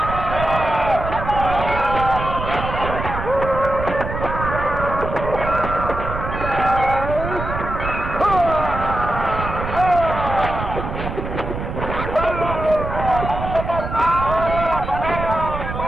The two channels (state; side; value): noise; right; rumble, 6 dB below the sound